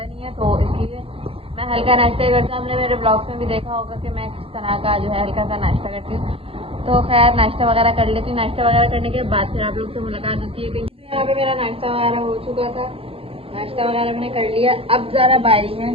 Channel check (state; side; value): late; left; 0.27 ms